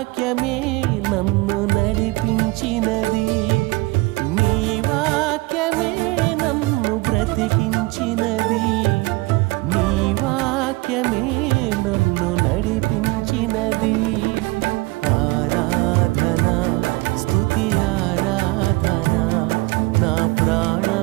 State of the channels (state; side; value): quieter; left; 23.2 dB